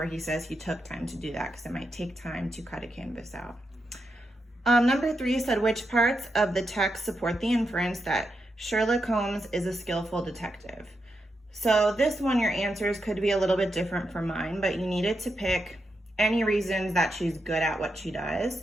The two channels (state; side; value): normal; both; correlation 0.85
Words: he says he took time to do that because it might take time to cut a canvas out. Number 3 said, "Which parts of the text support the inference that Sherlock Holmes is a skillful detective?" So this one, your answers could be a little bit different from mine, but you needed to pick any reasons that she's good at what she does.